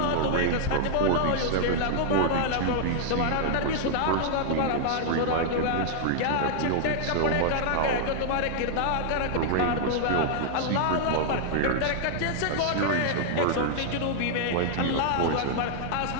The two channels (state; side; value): different; both; correlation -0.01